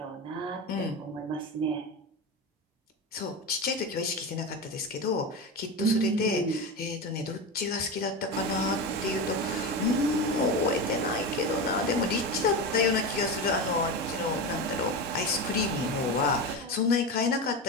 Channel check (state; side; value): normal; both; correlation 0.21